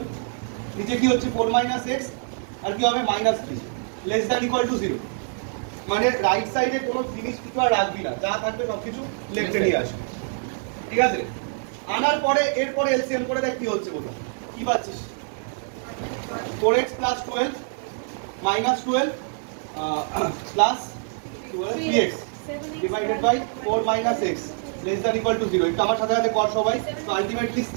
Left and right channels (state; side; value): silent; left; 62 dB below the other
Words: নিচে কি হচ্ছে 4 minus x, আর কি হবে -3 লেস দ্যান ইকুয়াল টু 0। মানে রাইট সাইডে কোনো জিনিস কিছু আর রাখবি না, যা থাকবে সবকিছু লেফটে নিয়ে আসবে, ঠিক আছে। আনার পরে এরপরে এলসিএম করে দেখ কি হচ্ছে, বলো কি পাচ্ছিস? 4x plus 12 minus 12 plus 3x divided by 4 minus x less than equal to 0। এটা আমার সাথে সাথে কর সবাই। তো ultimately